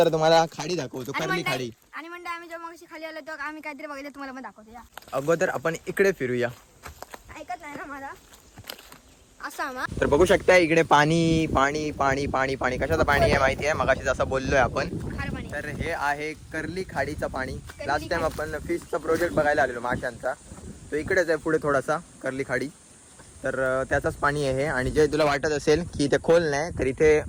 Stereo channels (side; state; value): both; identical; correlation 1.00